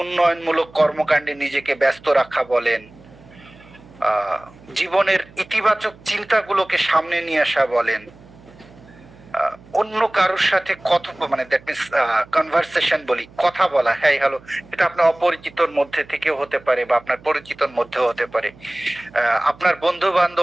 উন্নয়নমূলক কর্মকাণ্ডে নিজেকে ব্যস্ত রাখা বলেন, জীবনের ইতিবাচক চিন্তাগুলোকে সামনে নিয়ে আসা বলেন, অন্য কারোর সাথে মানে দ্যাট মিনস কনভারসেশন বলি, কথা বলা, হ্যাঁ হ্যালো, এটা আপনার অপরিচিতর মধ্যে থেকেও হতে পারে বা আপনার পরিচিতর মধ্যেও হতে পারে। আপনার বন্ধু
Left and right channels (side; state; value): right; noise; hum, 24 dB below the sound